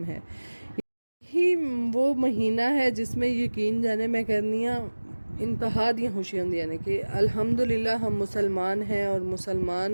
है। यही वो महीना है जिसमें यकीन जाने मैं कहनी हाँ इंतहा दी खुशी होंदी है कि अल्हम्दुलिल्लाह हम मुसलमान हैं और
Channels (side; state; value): both; inverted; correlation -1.00